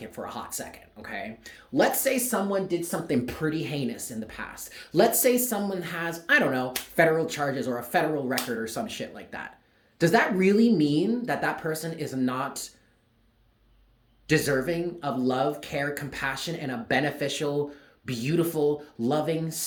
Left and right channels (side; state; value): both; identical; correlation 1.00